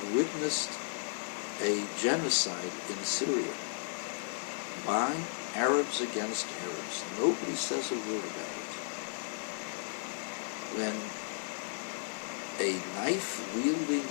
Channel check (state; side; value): silent; right; digital silence